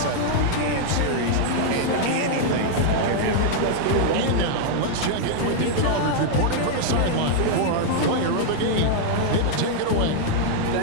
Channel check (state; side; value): different; both; correlation -0.01